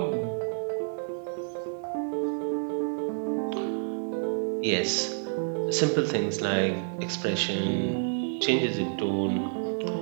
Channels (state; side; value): silent; left; digital silence